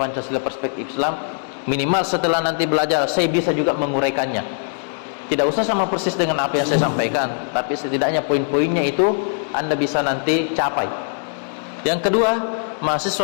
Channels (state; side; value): silent; right; digital silence